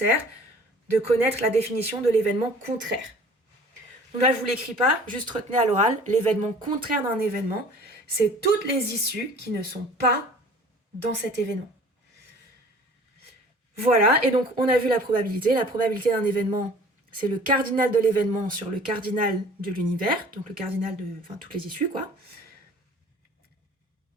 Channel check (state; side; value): normal; both; correlation 0.48